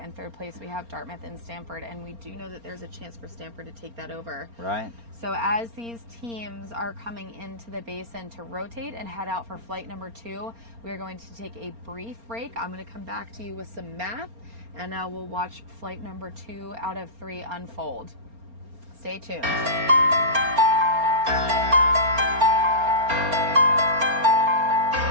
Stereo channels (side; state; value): left; late; 4.3 ms